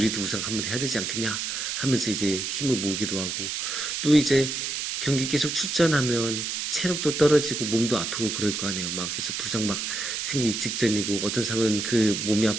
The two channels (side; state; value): right; noise; hiss, 3 dB below the sound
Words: 우승 한번 해야 되지 않겠냐 하면서 이제 힘을 모으기도 하고, 또 이제 경기 계속 출전하면 체력도 떨어지고 몸도 아프고 그럴 거 아니에요. 막 그래서 부상 막 생기기 직전이고, 어떤 사람은 그 몸이